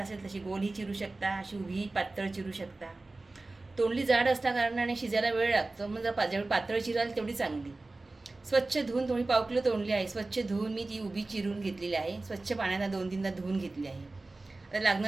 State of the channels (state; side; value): quieter; left; 3.2 dB